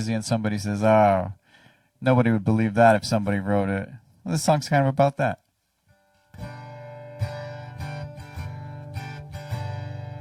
and somebody says, oh, nobody would believe that if somebody wrote it. Well, this song's kind of about that.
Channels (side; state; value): both; identical; correlation 1.00